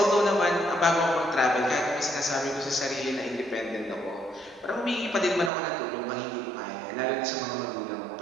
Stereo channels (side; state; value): left; drops out; at 5.5 s